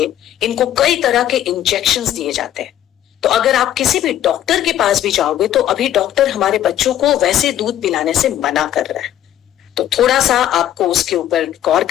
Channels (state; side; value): quieter; right; 11.7 dB